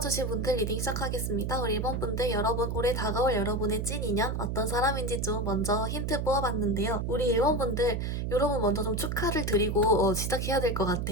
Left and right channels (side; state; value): right; noise; hum, 1 dB below the sound